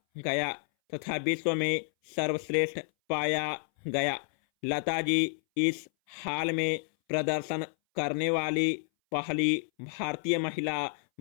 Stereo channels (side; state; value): right; silent; 58 dB below the other